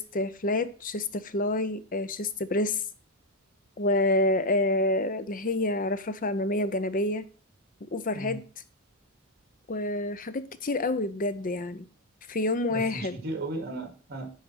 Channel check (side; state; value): both; normal; correlation 0.02